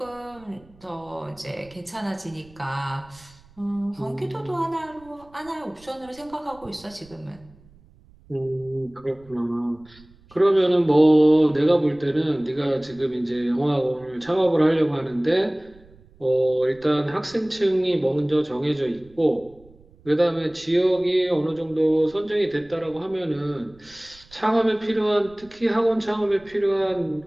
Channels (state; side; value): noise; right; rumble, 26 dB below the sound